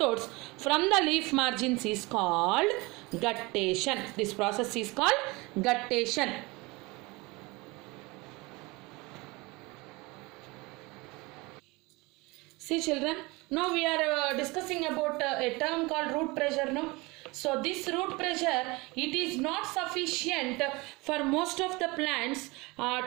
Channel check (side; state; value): left; quieter; 24.3 dB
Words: from the leaf margins is called guttation. This process is called guttation. See children, now we are discussing about a term called root pressure. No, So this root pressure, it is not sufficient for most of the plants